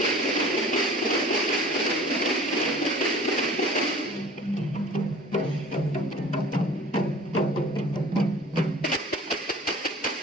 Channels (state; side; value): normal; both; correlation 0.45